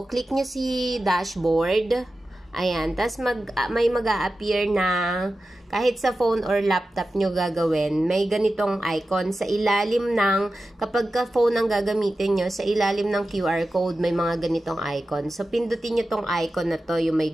click nyo si dashboard. Ayan, tas may mag-a-appear na kahit sa phone or laptop nyo gagawin, may ganitong icon sa ilalim ng, kapag ka phone ang gagamitin nyo, sa ilalim ng QR code, may mga ganitong icon. So, pindutin nyo tong icon na to, yung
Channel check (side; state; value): both; normal; correlation 0.93